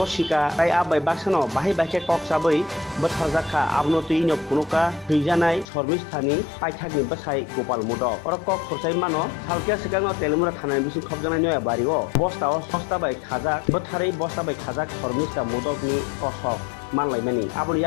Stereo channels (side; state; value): right; drops out; at 5.7 s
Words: tai abai baksano bahai bahke kok sabai botharjakha abno tuino phunuka heijanai shormistani paithakni basai gopal modok orok kok khorchai mano salkia sikangno telemura thanai bisu khobjanai noya bario bostao sosta bai khajak botharai bosta bai khajak shormista modokni kosok manlaimani aboni